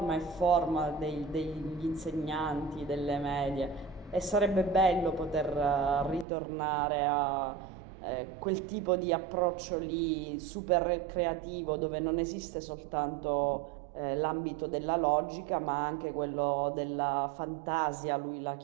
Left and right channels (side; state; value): left; drops out; at 6.2 s